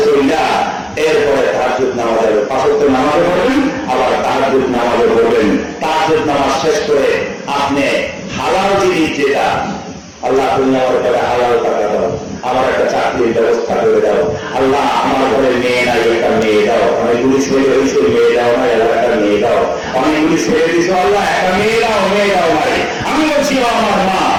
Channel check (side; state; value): both; identical; correlation 1.00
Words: চলিয়া এরপরে তাহাজ্জুদ নামাজে 5 ওয়াক্ত নামাজে পড়বেন, আবার তাহাজ্জুদ নামাজে পড়বেন। তাহাজ্জুদ নামাজ শেষ করে আপনি হালাল জিনিস যেটা আল্লাহ তুমি আমার ঘরে হালাল টাকা দাও, আমার একটা চাকরির ব্যবস্থা করে দাও, আল্লাহ আমার ঘরে মেয়ে নাই একটা মেয়ে দাও, অনেকগুলি ছেলে হয়েছে মেয়ে দাও না, একটা মেয়ে দাও, অনেকগুলি ছেলে দিছো আল্লাহ একটা মেয়ে দাও নাই। আমি বলছি ও আমার মা,